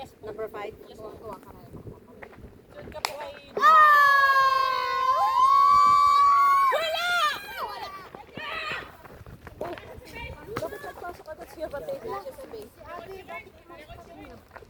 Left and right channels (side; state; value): both; identical; correlation 1.00